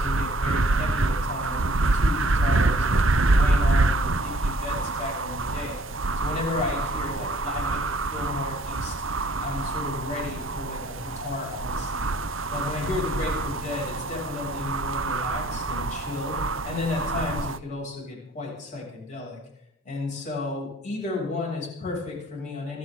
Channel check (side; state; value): both; normal; correlation 0.58